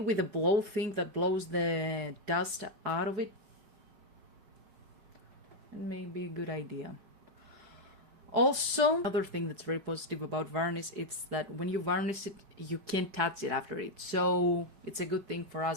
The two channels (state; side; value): late; left; 5.1 ms